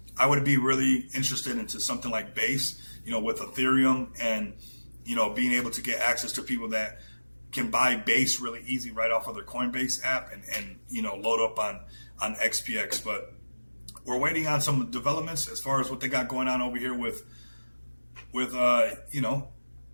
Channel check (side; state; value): both; inverted; correlation -1.00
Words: I would be really interested into something like Base, with Ethereum, and, being able to get access to people that can buy Base really easy right off of their Coinbase app and load up on XPX. But we're waiting on some developments as far as what they got going on over here with